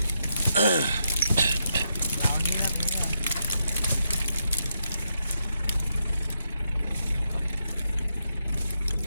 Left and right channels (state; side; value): inverted; both; correlation -0.82